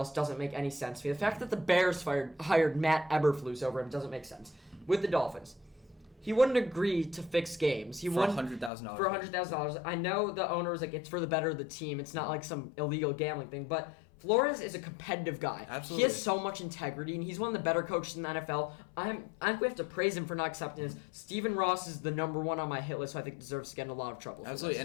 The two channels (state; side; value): drops out; right; at 8.7 s